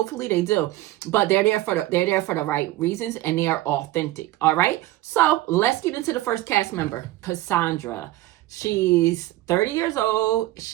they do, but they're there for the right reasons and they are authentic. All right. So let's get into the first cast member, Cassandra. She's 30 years old.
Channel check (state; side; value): quieter; left; 16.3 dB